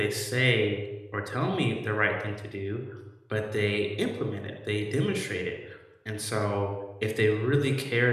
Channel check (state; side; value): identical; both; correlation 1.00